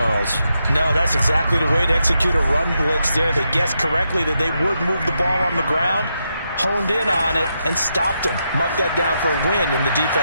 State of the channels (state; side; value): inverted; both; correlation -0.83